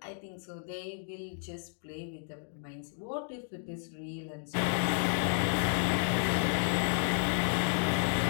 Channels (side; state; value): right; silent; digital silence